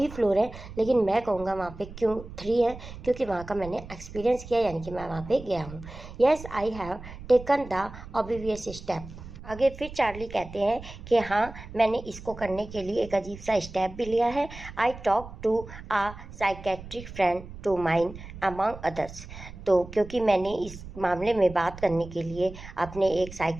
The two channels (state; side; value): noise; right; rumble, 14 dB below the sound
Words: फ्लोर है, लेकिन मैं कहूँगा वहाँ पे क्यों 3 है, क्योंकि वहाँ का मैंने एक्सपीरियंस किया, यानी कि मैं वहाँ पे गया हूँ। Yes, I have taken the obvious step. आगे फिर चार्ली कहते हैं कि हाँ, मैंने इसको करने के लिए एक अजीब सा स्टेप भी लिया है। I talk to a psychiatric friend to mine among others. तो क्योंकि मैंने इस मामले में बात करने के लिए अपने एक